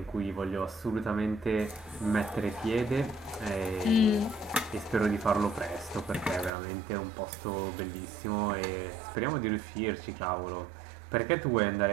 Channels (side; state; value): left; drops out; at 6.5 s